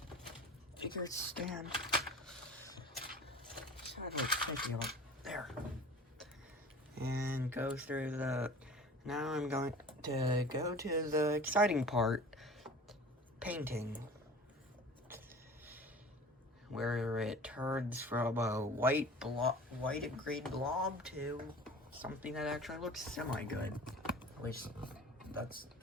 figure stand. There. And go through the. Now I'm going to go to the exciting part, painting, where it turns from a white and green blob to something that actually looks semi-good. At least that's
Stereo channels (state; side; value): normal; both; correlation 0.42